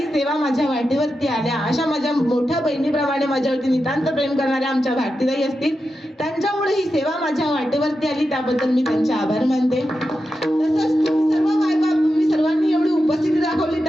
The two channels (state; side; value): normal; both; correlation 0.89